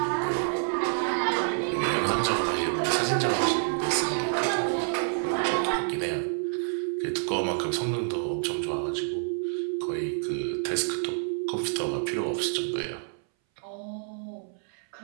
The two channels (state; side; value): silent; left; 59 dB below the other